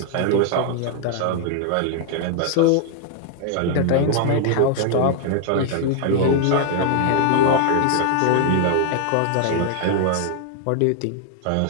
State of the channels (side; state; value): both; different; correlation 0.00